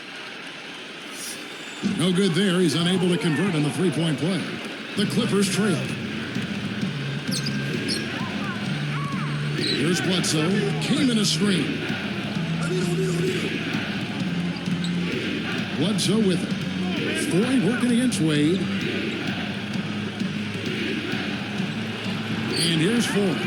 No good there. He's unable to convert on the three-point play. The Clippers trail. Here's Bledsoe. Came in a screen. Bledsoe with it. Foy working against Wade. And here's Foy.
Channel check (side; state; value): both; identical; correlation 1.00